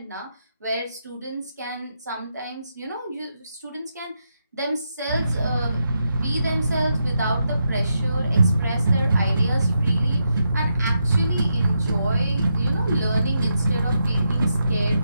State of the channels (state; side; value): inverted; both; correlation -0.83